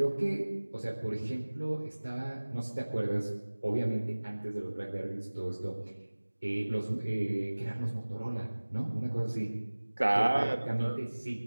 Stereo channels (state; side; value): inverted; both; correlation -1.00